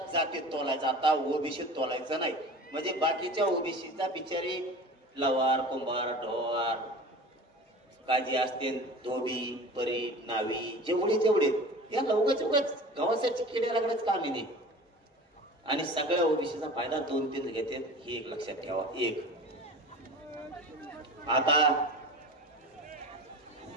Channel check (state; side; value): normal; both; correlation 0.37